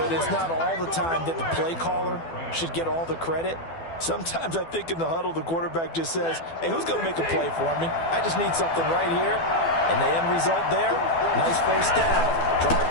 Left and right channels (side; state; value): right; late; 12 ms